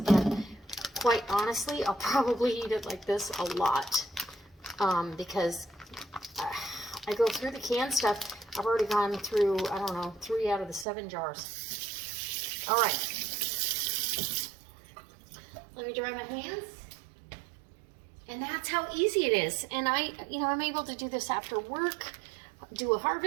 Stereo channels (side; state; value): left; drops out; at 10.9 s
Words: quite honestly, I'll probably eat it like this a lot, because I go through the canned stuff. I've already gone through, I don't know, 3 out of the 7 jars. All right. Let me dry my hands. And that's how easy it is. And I'm able to do this after work, do a